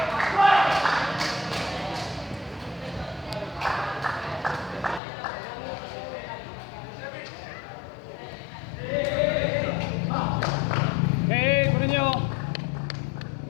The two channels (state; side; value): drops out; right; at 5.0 s